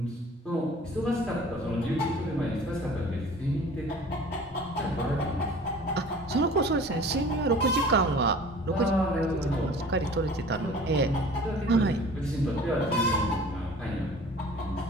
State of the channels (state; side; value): normal; both; correlation 0.45